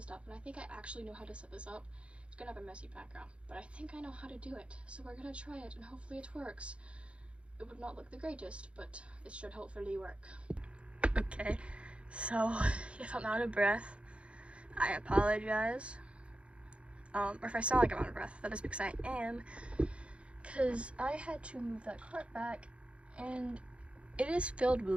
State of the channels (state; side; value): late; left; 0.060 ms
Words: stuff, and I think I actually know how to set this up. It's gonna have a messy background, but I think I know how to do it, so we're gonna try it and hopefully it works. It would not look the greatest, but it should hopefully work. Okay, So if I'm out of breath, I apologize. Or if I sound like I'm out of breath, that is because I am. Because I had to move that cart back, and it is filled